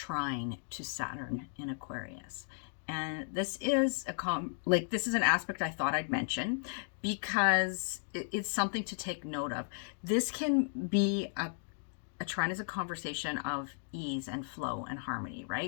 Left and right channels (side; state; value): right; silent; digital silence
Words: to Saturn in Aquarius. And this is this is an aspect I thought I'd mention because it's something to take note of. This can be a trine is a conversation of ease and flow and harmony,